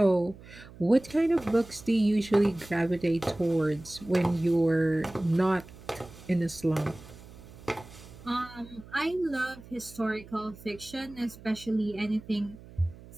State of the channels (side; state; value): right; noise; hum, 19 dB below the sound